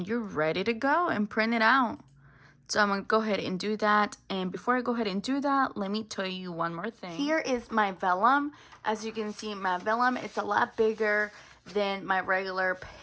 you're ready to go and print it out. So I'm going to go ahead and do that. And before I go ahead and do that, let me tell you one more thing. Here is my vellum. As you can see, my vellum, it's a lot bigger than my regular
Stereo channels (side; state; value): both; identical; correlation 1.00